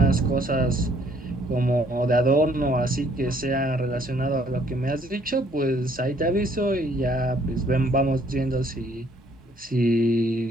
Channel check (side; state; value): both; normal; correlation 0.64